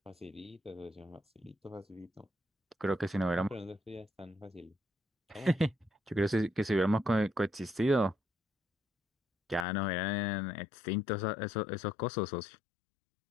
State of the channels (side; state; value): right; drops out; at 9.7 s